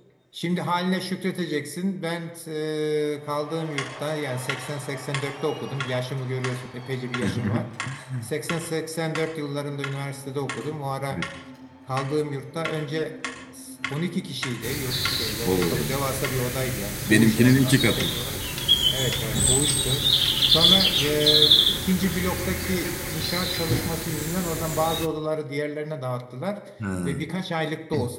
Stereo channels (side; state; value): both; identical; correlation 1.00